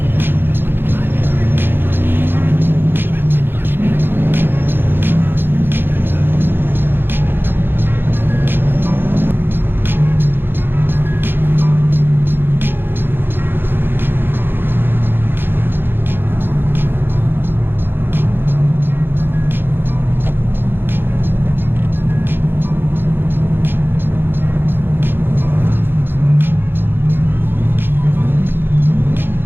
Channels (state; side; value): late; left; 0.10 ms